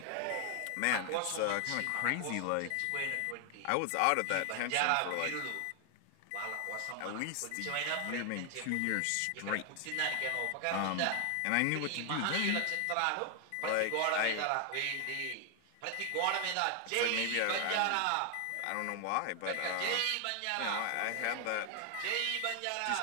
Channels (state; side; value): different; both; correlation 0.00